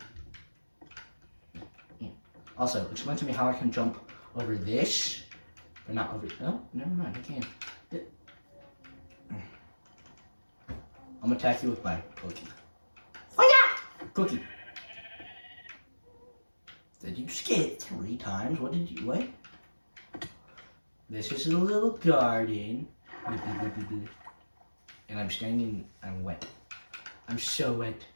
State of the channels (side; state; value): both; inverted; correlation -1.00